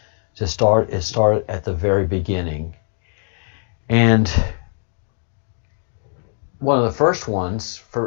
to start is start at the very beginning. And one of the first ones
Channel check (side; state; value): right; silent; digital silence